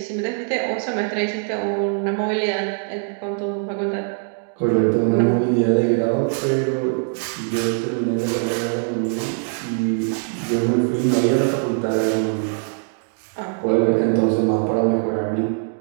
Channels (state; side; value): silent; left; 62 dB below the other